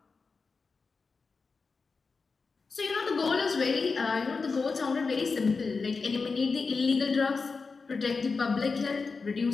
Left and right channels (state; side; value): quieter; right; 4.5 dB